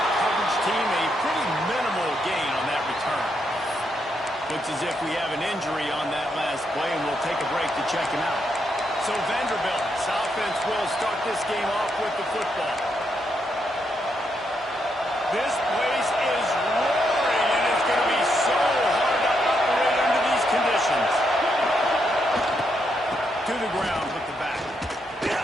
coverage team. A pretty minimal gain on that return. Looks as if we have an injury on that last play, and we'll take a break to check him out. So Vanderbilt's offense will start this game off with the football. This place is roaring, and it's going to be so hard to operate under these conditions. To the ground with the back.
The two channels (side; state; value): both; normal; correlation 0.79